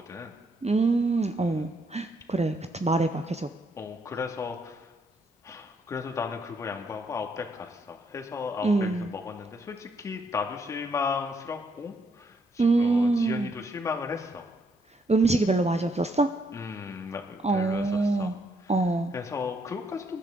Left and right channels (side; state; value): both; normal; correlation 0.73